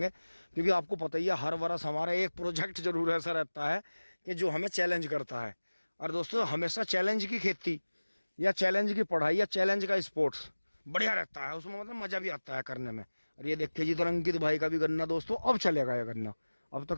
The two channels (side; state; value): both; inverted; correlation -1.00